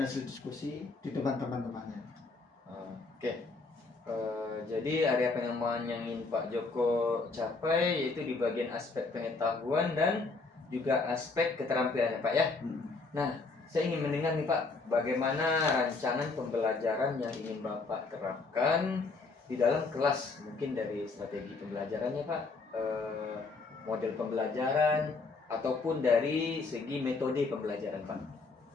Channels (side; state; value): right; quieter; 3.9 dB